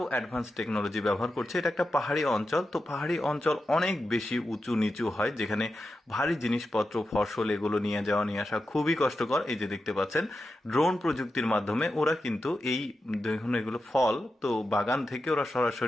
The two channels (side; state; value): both; normal; correlation 0.90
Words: অ্যাডভান্স টেকনোলজি ব্যবহার করছে। এটা একটা পাহাড়ি অঞ্চল, তো পাহাড়ি অঞ্চল অনেক বেশি উঁচু নিচু হয়, যেখানে ভারী জিনিসপত্র ফসল এগুলো নিয়ে যাওয়া নিয়ে আসা খুবই কষ্টকর। এই যে দেখতে পাচ্ছেন ড্রোন প্রযুক্তির মাধ্যমে ওরা কিন্তু এই দেখুন এগুলো ফল, তো বাগান থেকে ওরা